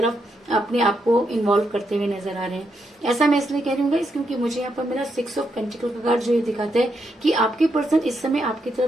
अपने आप को इन्वॉल्व करते हुए नजर आ रहे हैं। ऐसा मैं इसलिए कह रही हूँ क्योंकि मुझे यहाँ पर मेरा 6 ऑफ पेंटिकल का कार्ड, जो ये दिखाता है कि आपके पर्सन इस समय आपकी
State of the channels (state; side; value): normal; both; correlation 0.80